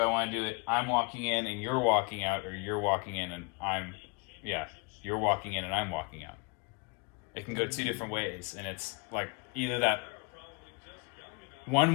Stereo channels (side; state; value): right; quieter; 32.1 dB